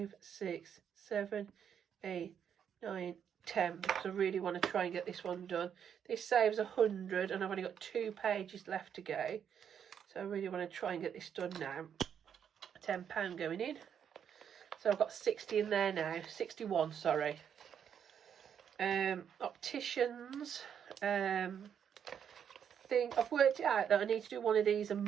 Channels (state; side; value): quieter; left; 8.2 dB